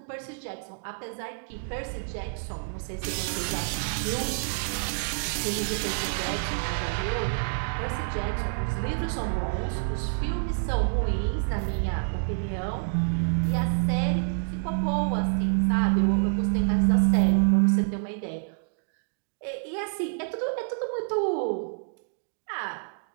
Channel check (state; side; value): silent; left; digital silence